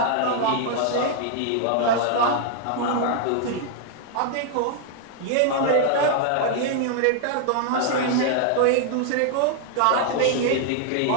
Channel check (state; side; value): different; both; correlation 0.00